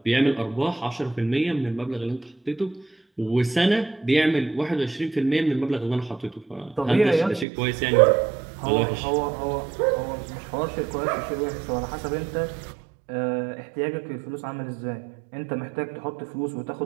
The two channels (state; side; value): drops out; left; at 7.5 s